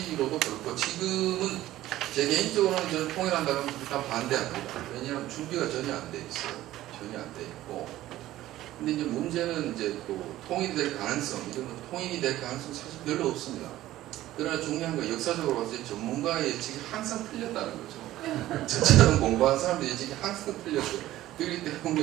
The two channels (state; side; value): quieter; left; 14.9 dB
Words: 그렇고 지금은 제 개인적으로는 저는 통일한다면 일단 반대합니다. 왜냐하면 준비가 전혀 안 돼 있어요. 전혀 안 돼 있고. 근데 이제 문제는 이제 또 통일이 될 가능성, 이런 통일이 될 가능성 사실 별로 없습니다. 그러나 중요한 건 역사적으로 봤을 때 전문가의 예측이 항상 틀렸다는 거죠. 저처럼 공부한 사람들의 예측이 항상 틀렸어요. 그렇기